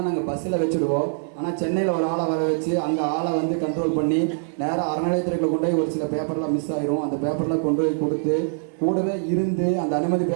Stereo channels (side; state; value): left; silent; 61 dB below the other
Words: நாங்கள் பஸ்ஸில் வச்சுடுவோம். ஆனால் சென்னையில் ஒரு ஆளை வர வச்சு அந்த ஆளை வந்து கண்ட்ரோல் பண்ணி நேராக அறநிலையத்துறையில் கொண்டு போய் ஒரு சில பேப்பர்லாம் மிஸ் ஆயிரும். அந்த பேப்பர்லாம் கொண்டு போய் கொடுத்து கூடவே இருந்து அந்த அனுமதி